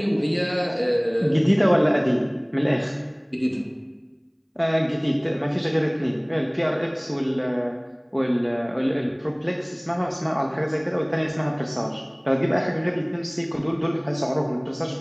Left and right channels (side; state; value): both; identical; correlation 1.00